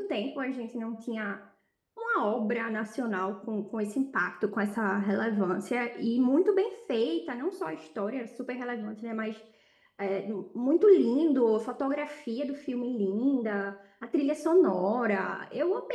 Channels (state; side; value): identical; both; correlation 1.00